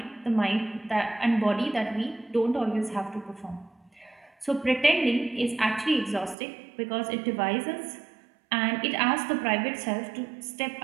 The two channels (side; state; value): left; drops out; at 6.4 s